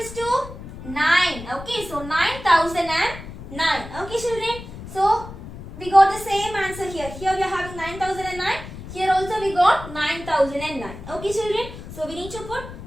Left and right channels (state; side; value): noise; left; rumble, 13 dB below the sound